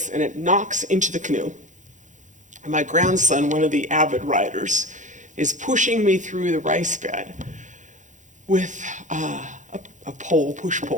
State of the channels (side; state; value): left; late; 0.36 ms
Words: and it knocks into the canoe. And my grandson, one of the avid riders, is pushing me through the rice bed with a pole, push